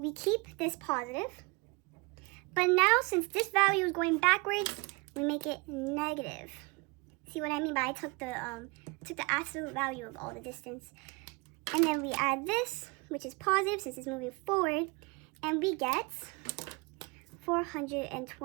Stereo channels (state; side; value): quieter; left; 28.5 dB